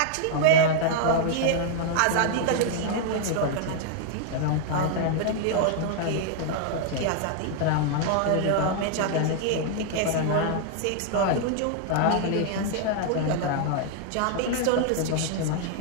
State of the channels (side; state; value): both; different; correlation -0.01